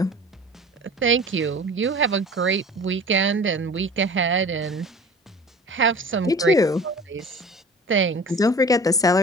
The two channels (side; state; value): both; normal; correlation 0.41